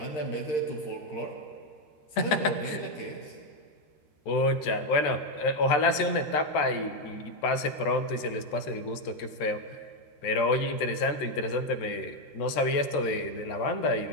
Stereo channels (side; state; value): right; late; 13 ms